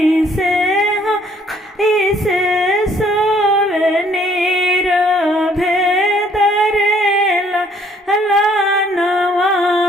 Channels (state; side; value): normal; both; correlation 0.62